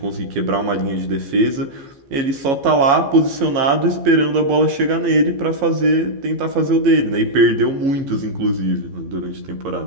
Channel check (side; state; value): left; late; 15 ms